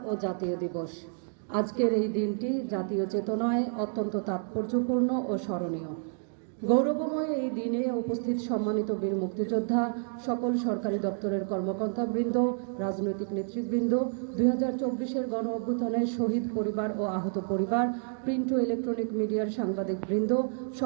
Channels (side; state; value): left; silent; digital silence